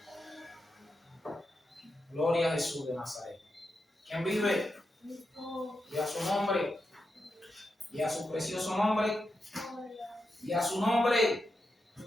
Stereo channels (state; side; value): normal; both; correlation 0.87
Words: Gloria a Jesús de Nazaret. ¿Quién vive? Y a su nombre. Y a su precioso nombre. Y a su nombre.